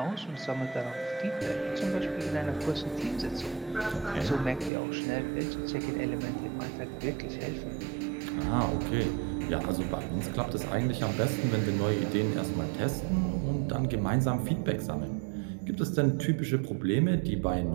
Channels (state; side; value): drops out; left; at 4.7 s